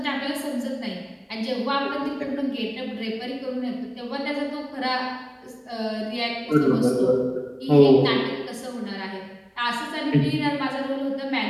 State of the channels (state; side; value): identical; both; correlation 1.00